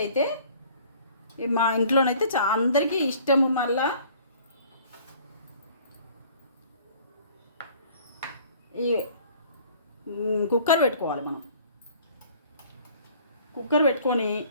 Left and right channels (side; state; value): both; inverted; correlation -0.52